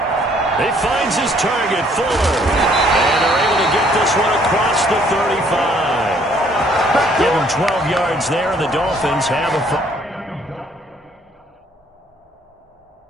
He finds his target, Fuller. And they're able to get this one across the 35. Give him 12 yards there, and the Dolphins have a...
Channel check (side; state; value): both; normal; correlation 0.63